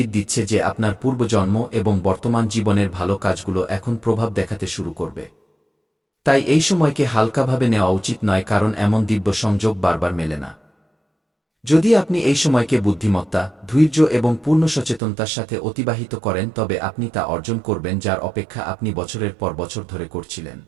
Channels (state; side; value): drops out; left; at 15.0 s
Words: দিচ্ছে যে আপনার পূর্বজন্ম এবং বর্তমান জীবনের ভালো কাজগুলো এখন প্রভাব দেখাতে শুরু করবে। তাই এই সময়কে হালকাভাবে নেওয়া উচিত নয়, কারণ এমন দিব্য সংযোগ বারবার মেলে না। যদি আপনি এই সময়কে বুদ্ধিমত্তা, ধৈর্য এবং পূর্ণ সচেতনতার সাথে অতিবাহিত করেন তবে আপনি তা অর্জন করবেন যার অপেক্ষা আপনি বছরের পর বছর ধরে করছিলেন।